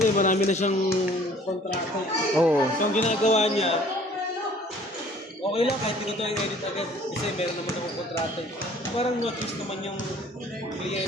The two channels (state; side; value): normal; both; correlation 0.54